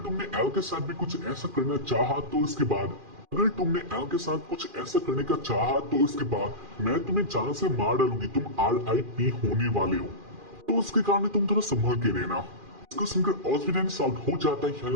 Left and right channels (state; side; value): late; left; 2.4 ms